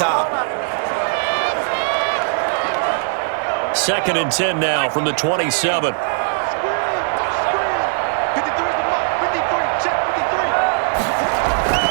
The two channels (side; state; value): left; silent; 61 dB below the other